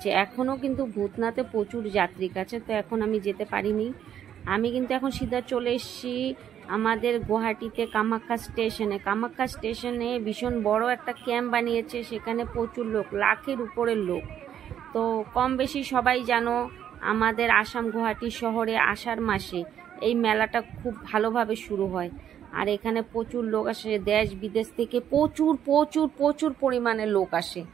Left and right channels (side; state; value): left; quieter; 9.8 dB